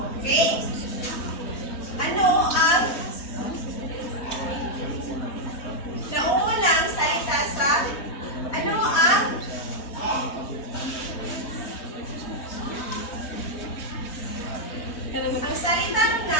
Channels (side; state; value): right; late; 3.2 ms